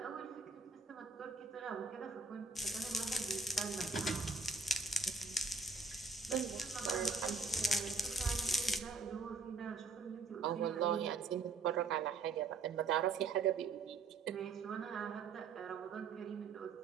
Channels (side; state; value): left; quieter; 4.2 dB